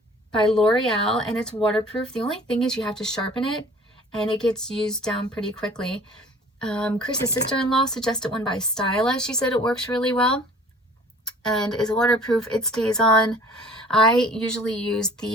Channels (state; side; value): normal; both; correlation 0.49